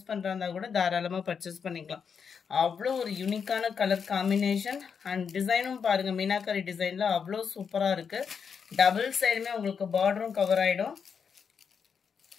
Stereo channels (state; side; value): quieter; right; 6.5 dB